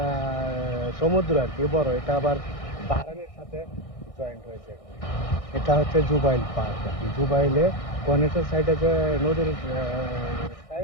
সমুদ্র আর কি, বড়। এটা আবার বাহরাইনের সাথে জয়েন্ট হয়েছে এখানে। এটা হচ্ছে জুবাইল পার্ক আর কি। জুবাইলে কনেটের সাইডে যে নদীর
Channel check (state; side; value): late; right; 1.6 ms